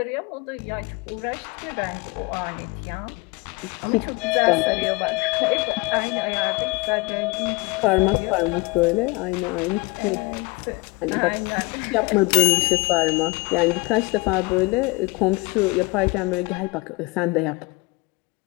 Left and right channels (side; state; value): right; quieter; 25.1 dB